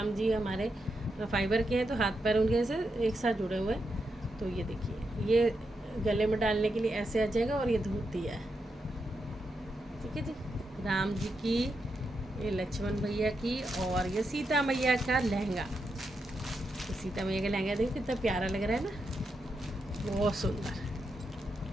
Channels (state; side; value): normal; both; correlation 0.85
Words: जी हमारे फाइबर के हैं, तो हाथ पैर उनके ऐसे एक साथ जुड़े हुए हैं। तो ये देखिए, ये गले में डालने के लिए ऐसे आ जाएगा, और ये धोती है, ठीक है जी। राम जी की, ये लक्ष्मण भैया की, और ये सीता मैया का लहंगा। तो सीता मैया का लहंगा देखिए कितना प्यारा लग रहा है ना, बहुत सुंदर,